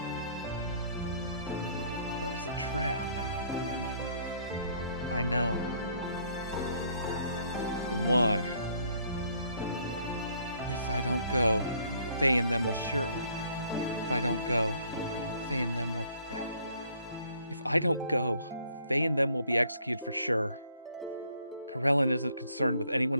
But it's a trap. I know. Then why? If I don't go, Faye and them will surely... If I don't go, Faye and them will... If I don't go, Faye and them will be executed for sure. Karelin isn't concerned with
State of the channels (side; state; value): both; inverted; correlation -0.63